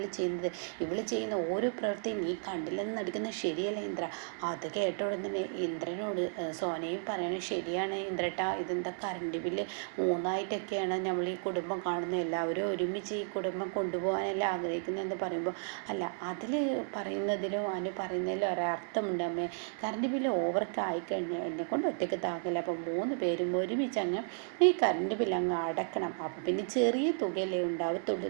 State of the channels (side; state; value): left; silent; digital silence